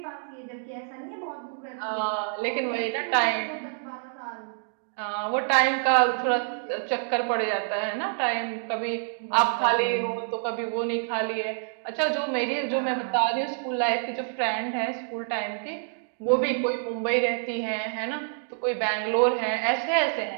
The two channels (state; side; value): silent; left; digital silence